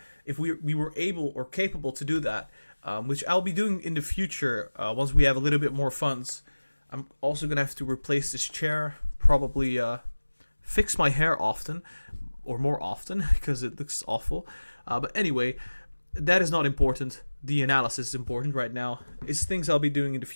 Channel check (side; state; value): both; inverted; correlation -1.00